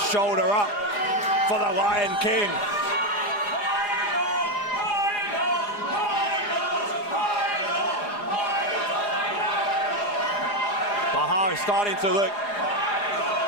shoulder up for the Lion King. Bahar is starting to look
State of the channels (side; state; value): right; late; 4.9 ms